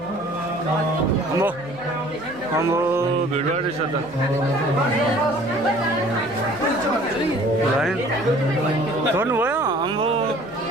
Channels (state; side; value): noise; left; hum, 24 dB below the sound